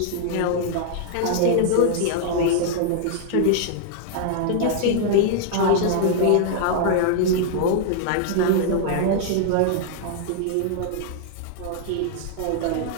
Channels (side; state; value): both; different; correlation 0.00